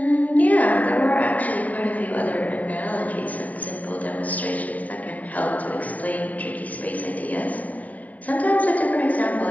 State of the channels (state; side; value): late; right; 0.073 ms